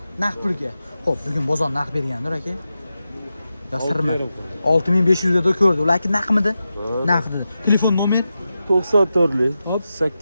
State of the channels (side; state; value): both; inverted; correlation -0.91